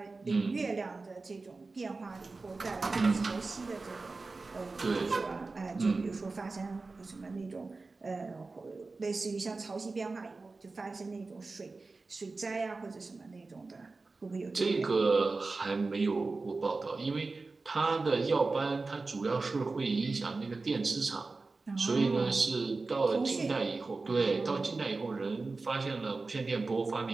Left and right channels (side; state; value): left; quieter; 3.8 dB